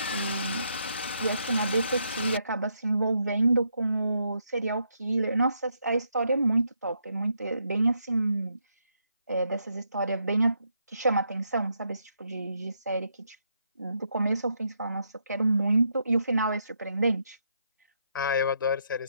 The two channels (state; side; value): inverted; both; correlation -0.78